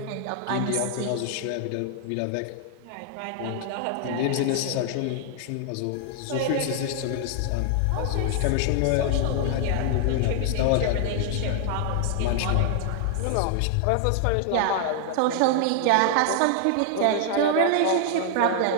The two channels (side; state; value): both; different; correlation 0.00